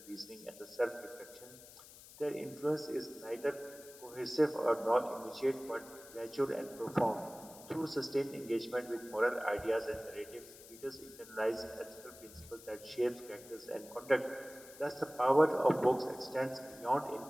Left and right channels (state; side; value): noise; left; hiss, 18 dB below the sound